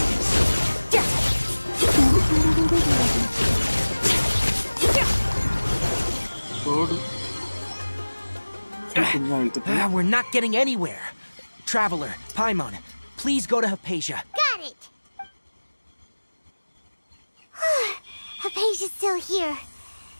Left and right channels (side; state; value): both; inverted; correlation -1.00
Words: We're not getting anywhere. Traveler, Paimon, please go to Hypatia. Got it! Hypatia's still here.